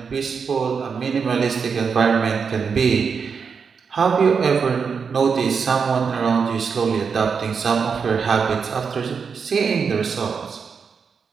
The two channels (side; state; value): left; quieter; 5.9 dB